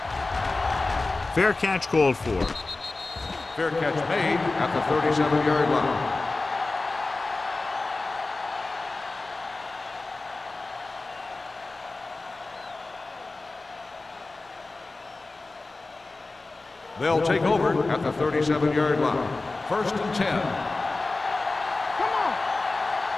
Fair catch called for. Fair catch made at the 37-yard line. They'll take over at the 37-yard line. 1st and 10.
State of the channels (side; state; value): right; quieter; 3.4 dB